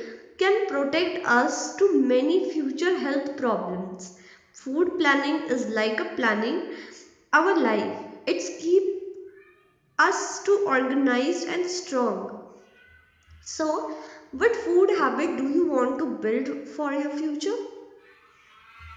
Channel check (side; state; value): both; identical; correlation 1.00